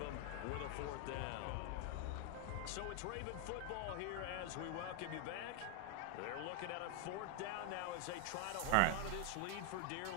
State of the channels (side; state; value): both; different; correlation 0.00